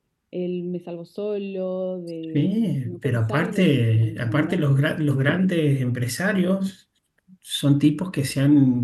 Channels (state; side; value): identical; both; correlation 1.00